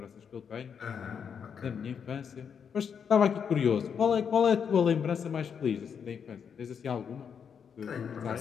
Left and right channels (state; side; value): quieter; right; 7.1 dB